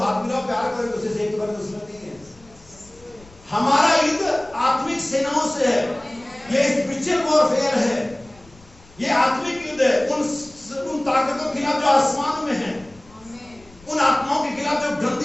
मिलाओ, प्यार करो, दूसरे से एक बार दुश्मन नहीं है। हमारा युद्ध आत्मिक सेनाओं से है, ये स्पिरिचुअल वॉरफेयर है, ये आत्मिक युद्ध है उन ताकतों के खिलाफ जो आसमान में है, उन आत्माओं के खिलाफ जो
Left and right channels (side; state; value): left; noise; rumble, 25 dB below the sound